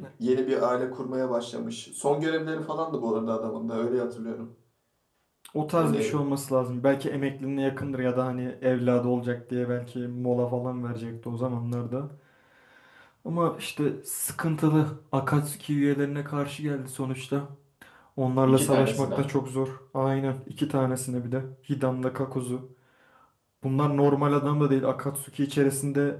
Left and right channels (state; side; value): identical; both; correlation 1.00